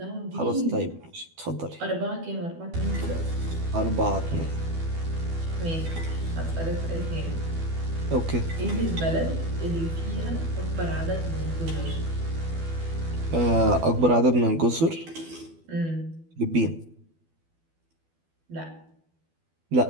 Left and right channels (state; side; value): late; left; 12 ms